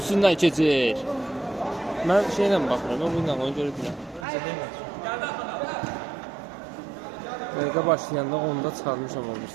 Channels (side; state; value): left; drops out; at 4.2 s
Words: keçir. Mən şeylə baxıram, mən bununla onu görürəm. Dəqiqə başlayanda onda çıxarmışam